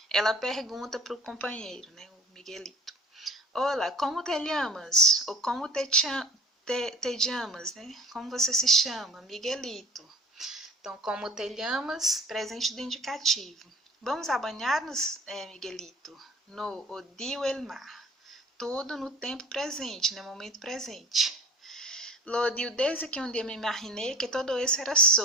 Ela pergunta para o companheiro, né? O Miguelito. Olá, como te llamas? Ou como te llamas, né? Como você se chama? Miguelito. Então, como te llamas, presente do indicativo. Vamos a banhar-nos, Miguelito? No odio el mar. Tudo no tempo presente, no momento presente. Lo odio desde que um dia me imaginei que todo isso era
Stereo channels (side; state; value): both; normal; correlation 0.44